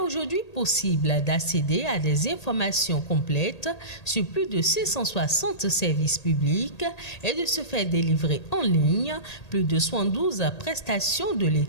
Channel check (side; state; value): right; late; 1.8 ms